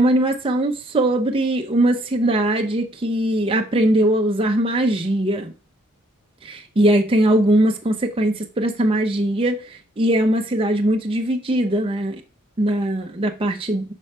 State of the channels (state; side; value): normal; both; correlation 0.67